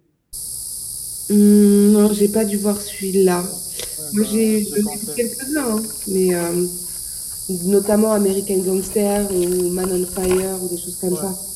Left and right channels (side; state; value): both; identical; correlation 1.00